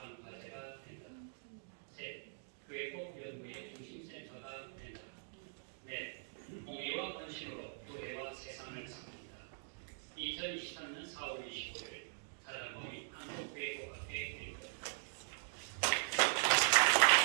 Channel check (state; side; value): silent; left; digital silence